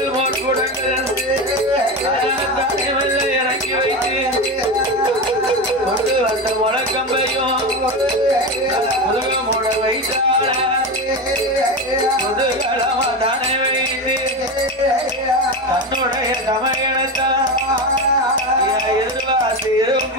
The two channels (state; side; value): normal; both; correlation 0.20